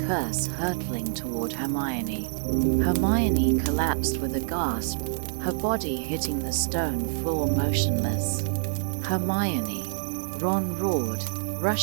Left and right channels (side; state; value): left; silent; digital silence